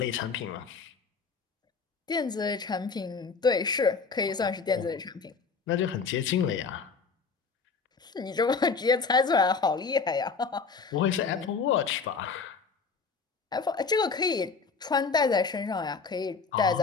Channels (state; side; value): quieter; right; 5.0 dB